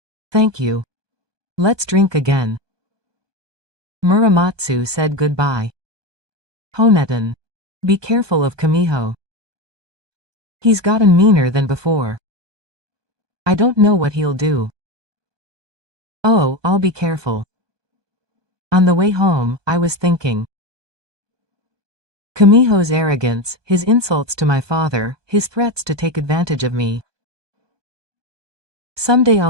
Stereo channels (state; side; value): late; left; 1.2 ms